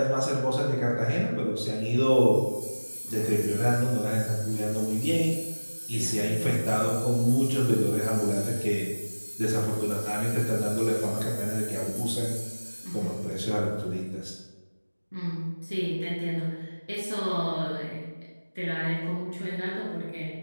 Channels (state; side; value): inverted; both; correlation -1.00